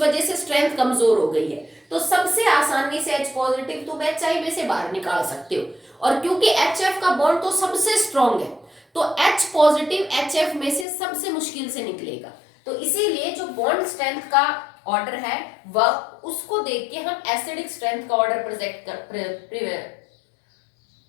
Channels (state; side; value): drops out; right; at 10.9 s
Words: से स्ट्रेंथ कमजोर हो गई है, तो सबसे आसानी से H पॉजिटिव तुम HI में से बाहर निकाल सकते हो। और क्योंकि HF का बॉन्ड तो सबसे स्ट्रॉन्ग है, तो H पॉजिटिव HF में से सबसे मुश्किल से निकलेगा। तो इसीलिए जो बॉन्ड स्ट्रेंथ का ऑर्डर है वह उसको देख के हम एसिडिक स्ट्रेंथ का ऑर्डर